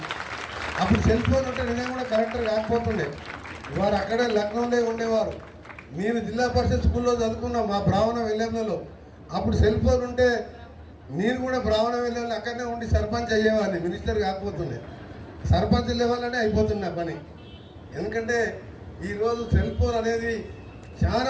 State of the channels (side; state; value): both; identical; correlation 1.00